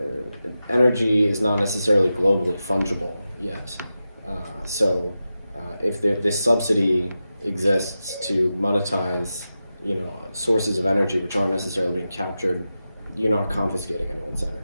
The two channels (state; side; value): inverted; both; correlation -0.92